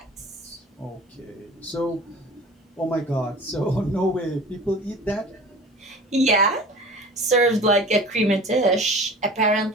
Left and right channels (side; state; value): both; normal; correlation 0.40